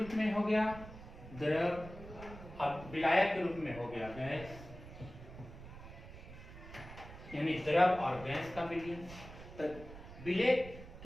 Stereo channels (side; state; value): right; noise; rumble, 14 dB below the sound